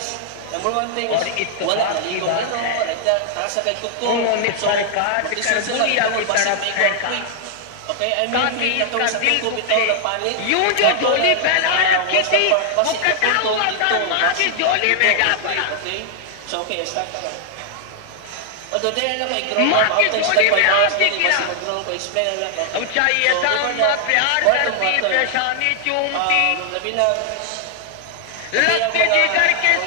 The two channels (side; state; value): both; different; correlation 0.00